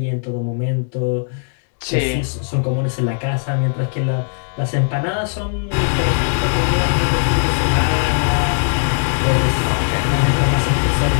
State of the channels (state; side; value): silent; right; digital silence